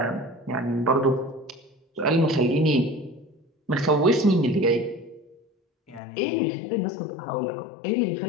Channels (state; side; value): drops out; right; at 6.0 s